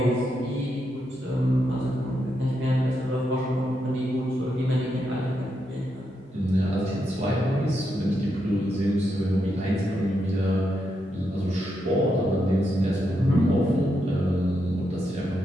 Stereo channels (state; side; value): normal; both; correlation 0.82